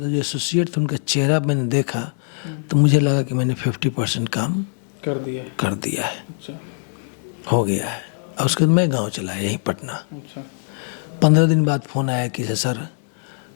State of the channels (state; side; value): silent; right; digital silence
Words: जो एसोसिएट थे उनका चेहरा मैंने देखा, तो मुझे लगा कि मैंने 50% काम कर दिया है। अच्छा। हो गया है। और उसके बाद मैं गांव चला, यहीं पटना। अच्छा। 15 दिन बाद फ़ोन आया कि सर